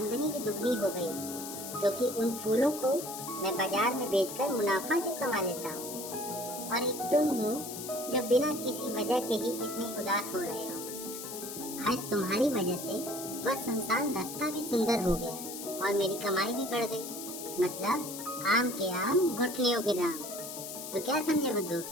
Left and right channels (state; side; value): noise; left; hiss, 9 dB below the sound